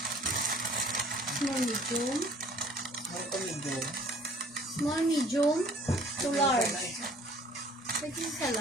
Small, medium. Ito medium. Small, medium to large. Pwede sa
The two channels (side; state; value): both; normal; correlation 0.54